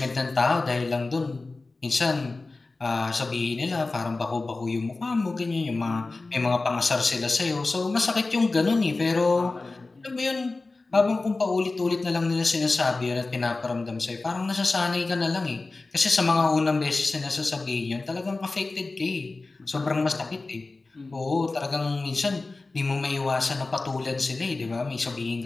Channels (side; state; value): right; quieter; 3.4 dB